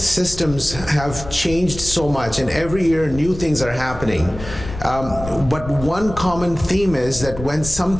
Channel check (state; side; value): noise; left; rumble, 11 dB below the sound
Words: have changed so much, and every year new things are happening. But one common theme is that when